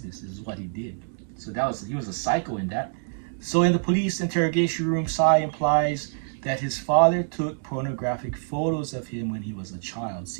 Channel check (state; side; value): silent; left; digital silence